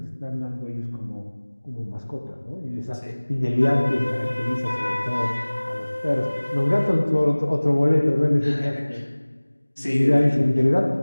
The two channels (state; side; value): inverted; both; correlation -1.00